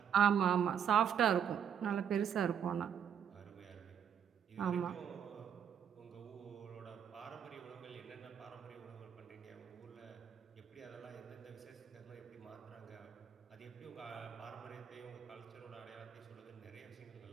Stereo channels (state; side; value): quieter; left; 8.3 dB